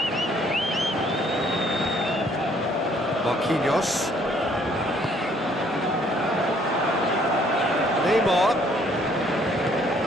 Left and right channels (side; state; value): both; normal; correlation 0.63